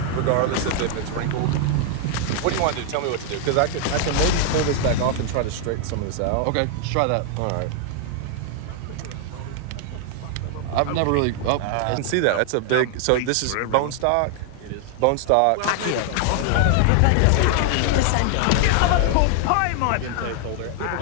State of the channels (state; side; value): different; both; correlation 0.00